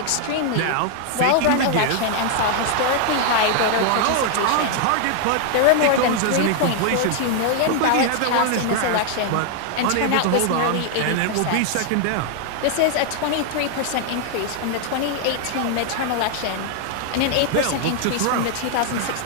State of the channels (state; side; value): different; both; correlation 0.00